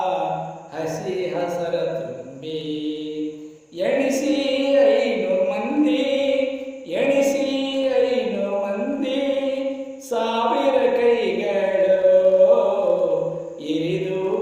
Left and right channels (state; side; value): identical; both; correlation 1.00